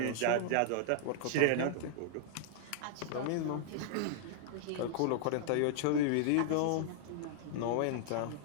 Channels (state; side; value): different; both; correlation -0.01